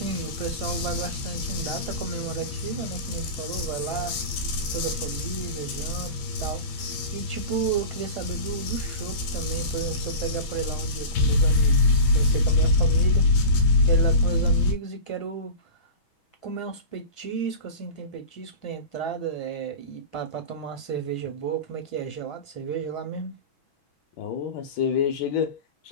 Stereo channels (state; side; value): late; right; 6.1 ms